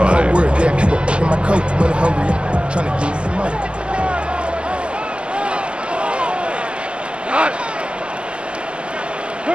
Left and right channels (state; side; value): late; left; 0.057 ms